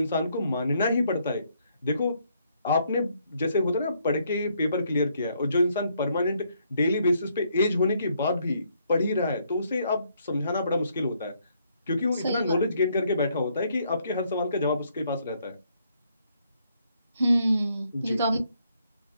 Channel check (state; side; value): inverted; both; correlation -0.72